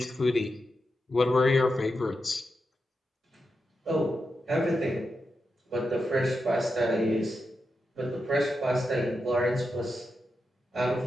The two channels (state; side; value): normal; both; correlation 0.87